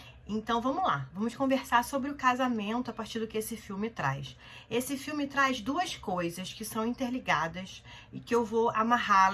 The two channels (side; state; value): both; identical; correlation 1.00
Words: Então vamos lá, vamos conversar sobre o casamento a partir do que esse filme traz. Esse filme traz duas coisas que são interligadas e que eu vou